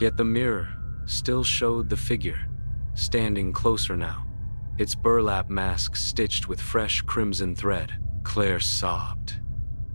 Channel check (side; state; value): both; inverted; correlation -1.00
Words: Yet the mirror still showed the figure, standing closer now, its burlap mask stitched with fresh crimson thread. Claire sobbed.